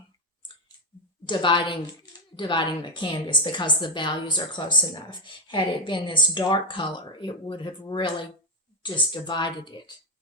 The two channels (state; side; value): normal; both; correlation 0.08